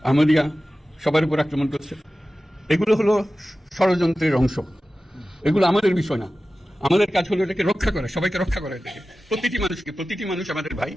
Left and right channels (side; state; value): both; normal; correlation 0.95